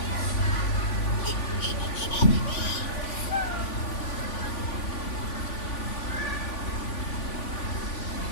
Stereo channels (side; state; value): right; late; 3.5 ms